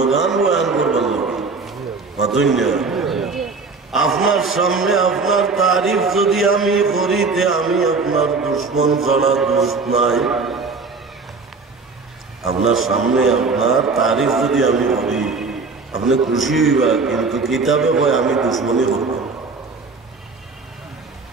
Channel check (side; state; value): left; quieter; 4.3 dB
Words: বয়ান করবার লাগে। আপনার সামনে আপনার তারিফ যদি আমি করিতে আমি আপনার দুশ্মন ছাড়া দোষ নাই। আপনার সামনে আপনার তারিফ যদি আমি করি আপনি খুশি হইবা, কিন্তু কিতাবে কয় আমি দুশ্মনী করব।